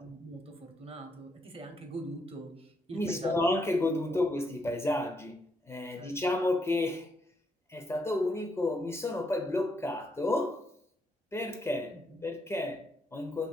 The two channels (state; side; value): normal; both; correlation 0.77